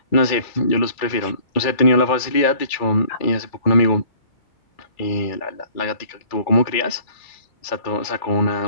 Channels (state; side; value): late; right; 2.4 ms